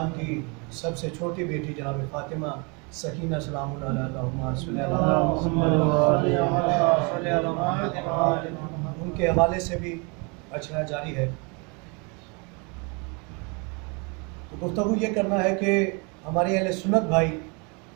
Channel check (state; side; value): quieter; left; 31.8 dB